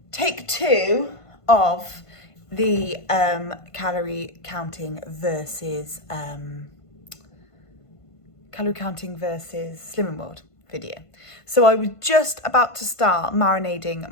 take 2 of the calorie counting versus Slimming World video. So I was just about to start marinating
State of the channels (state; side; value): late; right; 1.5 ms